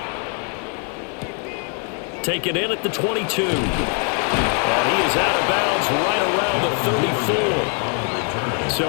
Take it in at the 22. And he is out of bounds right around 34.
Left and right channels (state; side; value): quieter; right; 39.7 dB